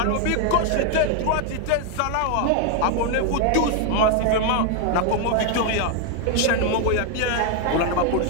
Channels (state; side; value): different; both; correlation 0.01